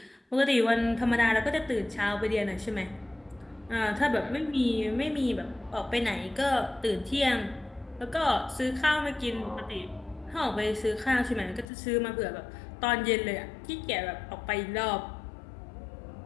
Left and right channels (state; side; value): drops out; right; at 11.7 s